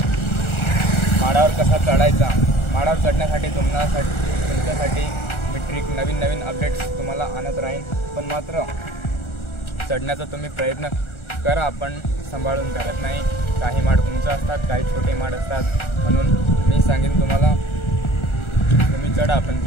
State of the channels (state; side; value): late; right; 1.4 ms